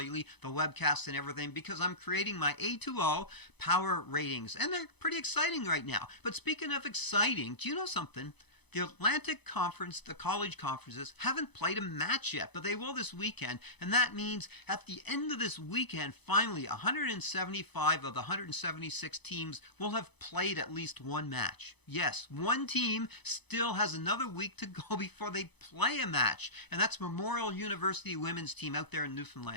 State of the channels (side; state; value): right; late; 0.99 ms